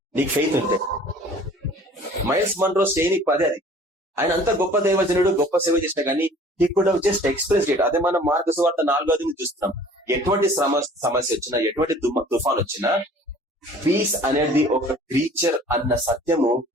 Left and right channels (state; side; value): normal; both; correlation 0.50